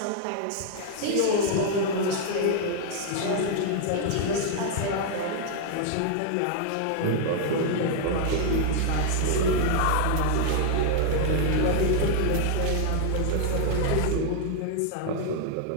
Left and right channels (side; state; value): both; different; correlation 0.00